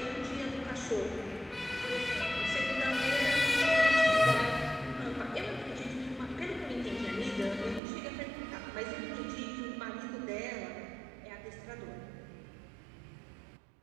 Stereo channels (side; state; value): left; drops out; at 7.8 s